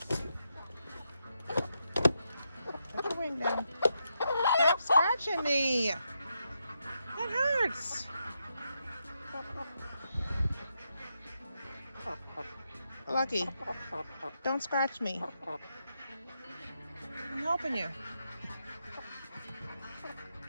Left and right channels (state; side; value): inverted; both; correlation -0.83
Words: Put your wing down. Stop scratching me. That hurts. Lucky, don't scratch me. I'm helping you.